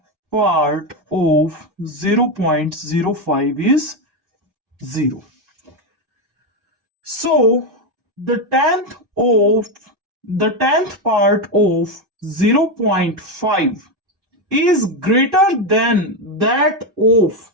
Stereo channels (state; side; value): late; left; 2.6 ms